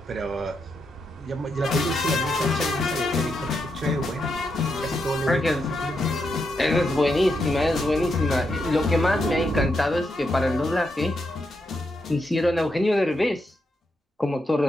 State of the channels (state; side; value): normal; both; correlation 0.83